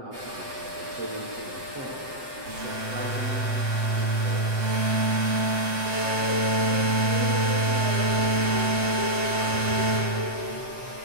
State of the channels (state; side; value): late; left; 7.8 ms